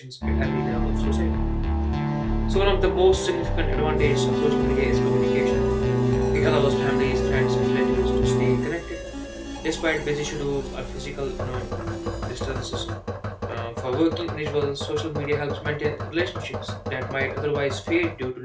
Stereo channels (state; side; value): identical; both; correlation 1.00